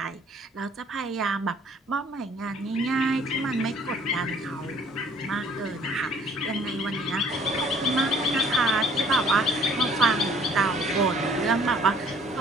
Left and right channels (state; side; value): normal; both; correlation 0.57